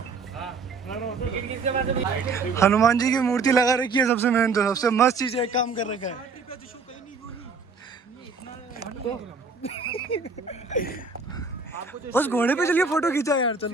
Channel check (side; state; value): left; quieter; 4.5 dB